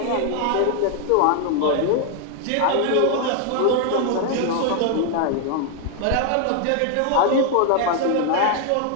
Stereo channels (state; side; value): different; both; correlation 0.00